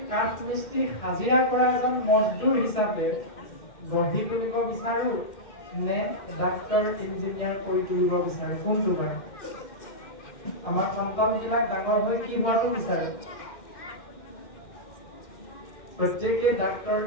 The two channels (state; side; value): late; right; 2.1 ms